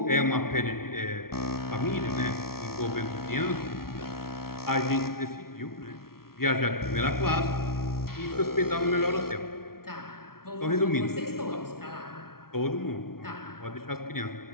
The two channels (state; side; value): late; right; 0.94 ms